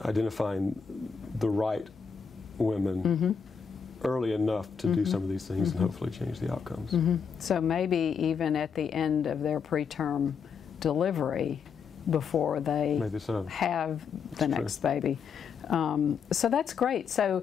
identifying the right women early enough to do some of these things and hopefully change the outcomes. So maybe even at the end of their preterm delivery, before they have the next baby. So that's great.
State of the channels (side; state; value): right; quieter; 6.3 dB